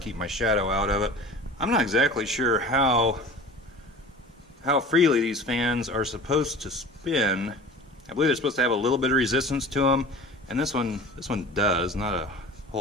my shadow out of it. I'm not exactly sure how freely these fans are supposed to spin. I believe they're supposed to have a little bit of resistance to them, and this one does, not a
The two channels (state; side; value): normal; both; correlation 0.40